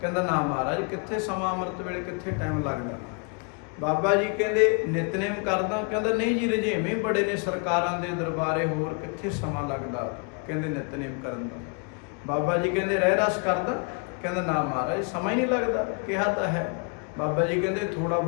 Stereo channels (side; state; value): right; quieter; 35.2 dB